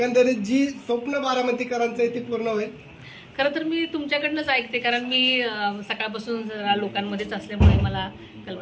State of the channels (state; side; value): identical; both; correlation 1.00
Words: जी स्वप्न बारामतीकरांचं आहे ते पूर्ण होईल? खरं तर मी तुमच्याकडनंच ऐकते, कारण मी सकाळपासून जरा लोकांमध्येच असल्यामुळे मला